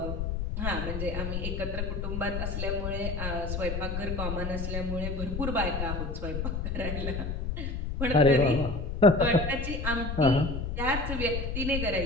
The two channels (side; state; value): left; noise; rumble, 3 dB below the sound